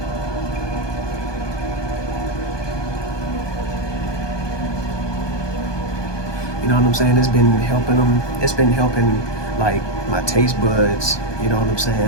You know what I'm saying? It's been helping them. It's been helping like my taste buds. You know what I'm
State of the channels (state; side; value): late; right; 1.2 ms